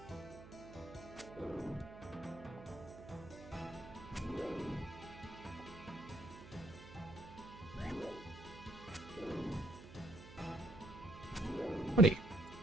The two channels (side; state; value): right; noise; hum, 15 dB below the sound